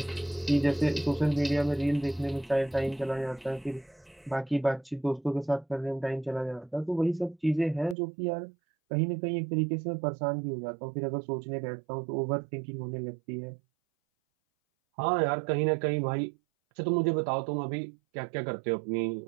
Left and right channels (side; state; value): left; drops out; at 8.0 s